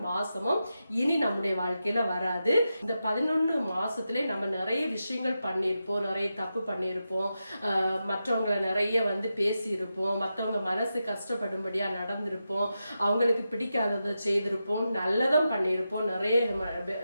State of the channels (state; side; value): inverted; both; correlation -0.89